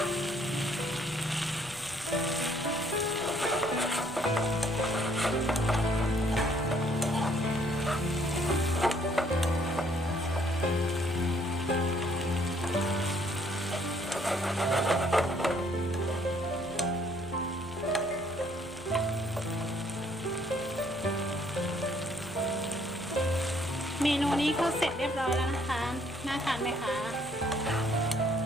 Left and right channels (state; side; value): noise; left; rumble, 22 dB below the sound